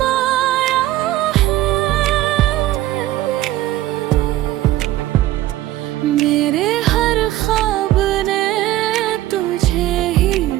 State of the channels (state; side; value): quieter; left; 15.1 dB